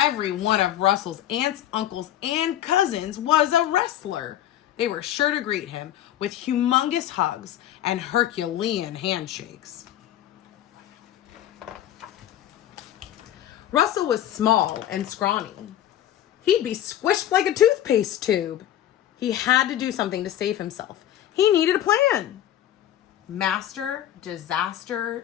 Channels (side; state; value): right; quieter; 12.0 dB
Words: one of Russell's aunts, uncles, and cousins was a wrestler. They were sure to greet him with humongous hugs and Herculean handshakes. Russell was small and scrawny. He'd be squished like a toothpaste tube. He had to do something to save himself. He needed a plan. Master Disaster